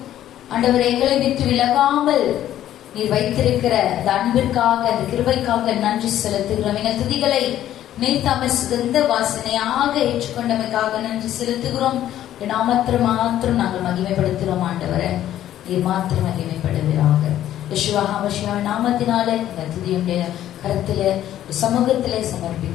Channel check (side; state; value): right; quieter; 12.1 dB